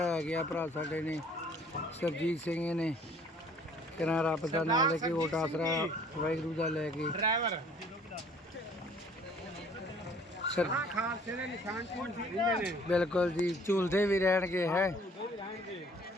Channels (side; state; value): both; normal; correlation 0.56